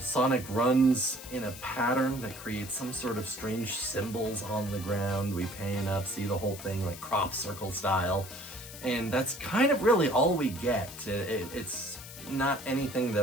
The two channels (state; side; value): noise; left; hiss, 14 dB below the sound